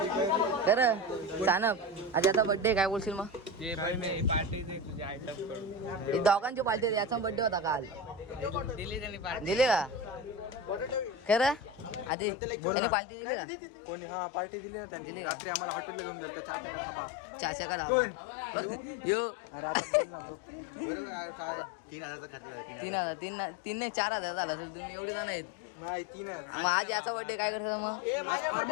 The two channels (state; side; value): drops out; right; at 12.1 s